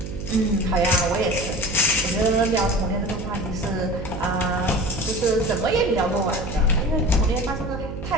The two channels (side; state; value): right; noise; hum, 8 dB below the sound